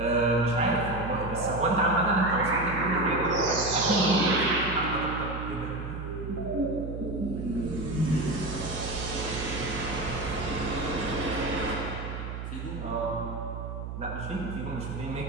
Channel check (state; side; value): noise; right; hum, 7 dB below the sound